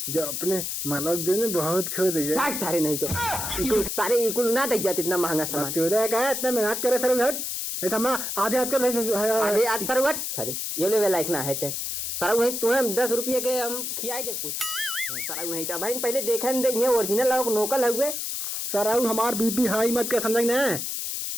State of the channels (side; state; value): left; noise; hiss, 3 dB below the sound